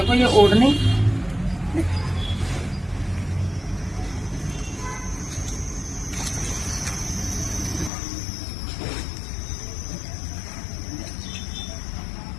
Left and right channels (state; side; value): drops out; right; at 7.9 s